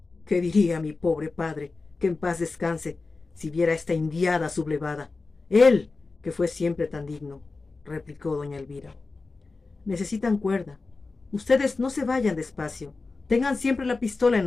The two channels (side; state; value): right; quieter; 3.8 dB